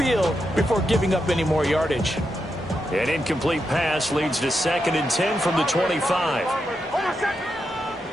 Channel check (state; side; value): normal; both; correlation 0.85